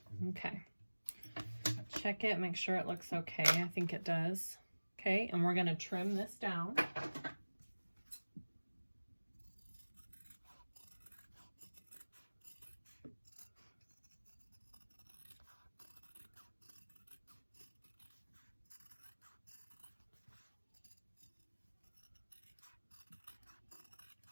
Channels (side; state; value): both; inverted; correlation -1.00